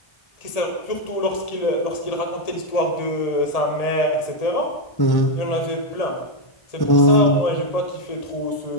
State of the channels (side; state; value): right; late; 1.7 ms